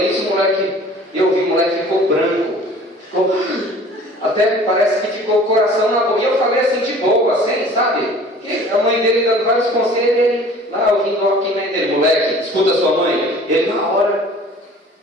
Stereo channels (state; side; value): normal; both; correlation 0.48